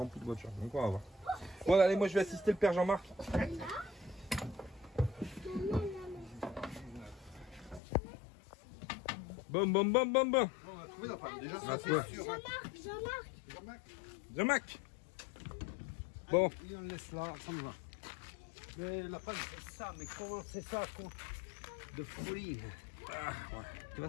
de voitures, donc on va voir. Voilà, allez, moi je vais assister le père Jean-Marc. Bam. On a trouvé la panne. Déjà, ça c'est sûr. Jean-Marc. Bon. Et on laisse là, ça me va. Mais la panne c'est ça, mais comment c'est ça de folie. Ah, ouais. Tu vois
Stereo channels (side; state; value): right; drops out; at 7.8 s